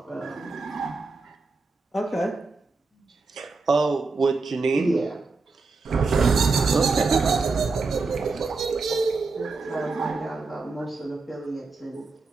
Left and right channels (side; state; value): left; quieter; 4.0 dB